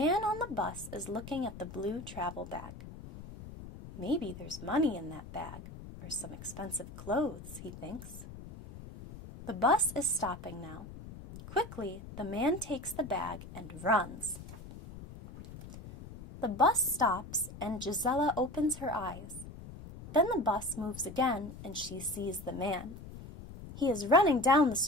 on the bus is looking at the blue travel bag. Maybe there's money in that bag, or some expensive clothes, he thinks. The bus is stopping now. Quickly, the man takes the bag and runs. The bus stops, and Gisela opens her eyes. Then the bus moves again, and she sees the man. He is running down the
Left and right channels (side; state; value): left; noise; rumble, 14 dB below the sound